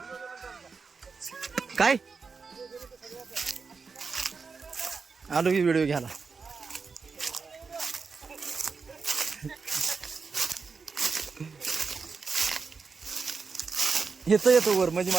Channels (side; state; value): left; quieter; 4.9 dB